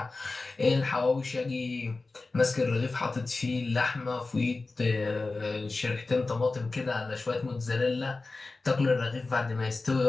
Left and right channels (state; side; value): quieter; right; 3.6 dB